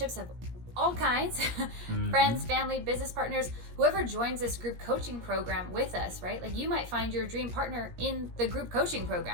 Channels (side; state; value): left; late; 17 ms